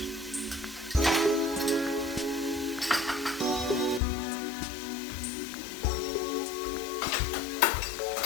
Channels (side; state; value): right; drops out; at 4.0 s